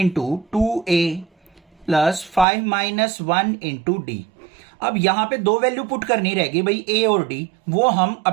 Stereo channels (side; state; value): left; drops out; at 2.5 s